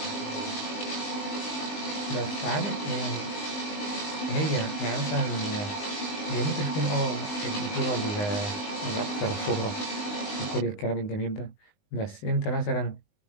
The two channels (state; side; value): late; right; 19 ms